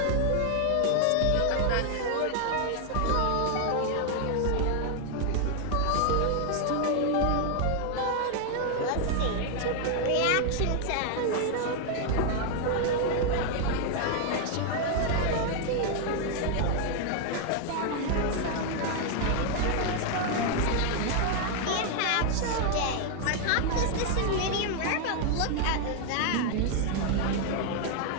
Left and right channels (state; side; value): different; both; correlation 0.00